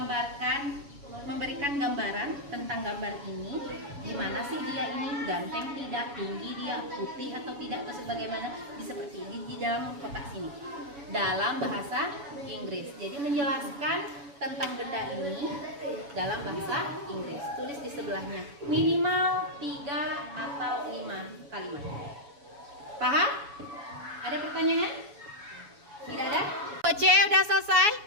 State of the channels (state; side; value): late; left; 7.1 ms